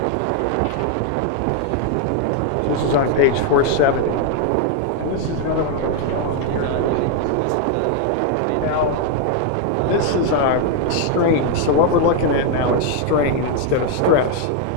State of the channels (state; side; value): different; both; correlation 0.00